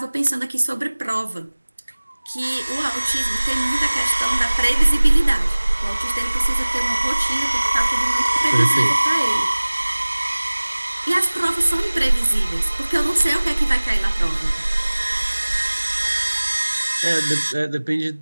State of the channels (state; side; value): inverted; both; correlation -1.00